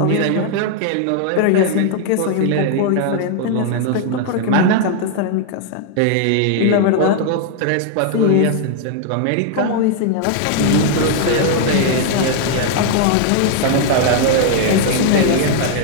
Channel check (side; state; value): both; different; correlation 0.00